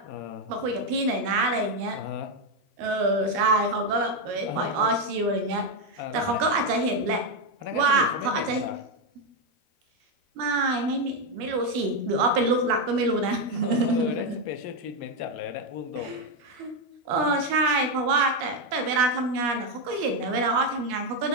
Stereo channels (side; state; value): left; late; 13 ms